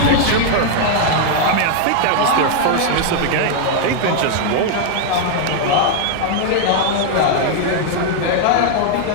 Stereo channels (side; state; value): both; different; correlation 0.00